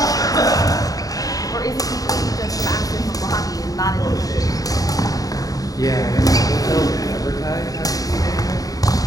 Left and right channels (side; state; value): right; late; 0.18 ms